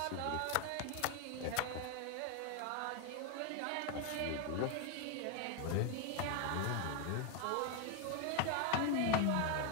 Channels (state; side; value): different; both; correlation 0.01